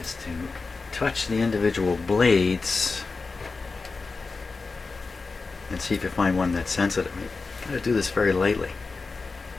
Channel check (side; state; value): right; quieter; 4.2 dB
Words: to touch the individual blades and see if you find one that's sensitive. You gotta do this very lightly.